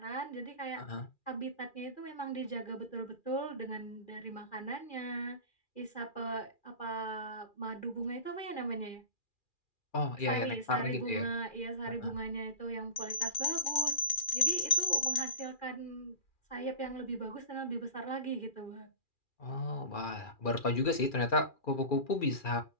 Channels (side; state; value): right; late; 2.4 ms